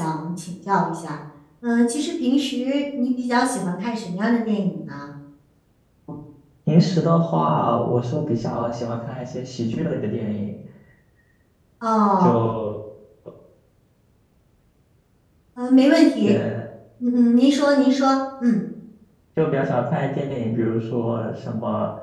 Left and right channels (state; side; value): identical; both; correlation 1.00